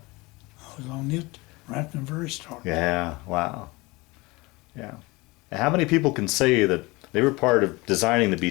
was on it right from the very start. Yeah. Wow. Yeah. And how many people can say that they were part of designing the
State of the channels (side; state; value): right; quieter; 23.5 dB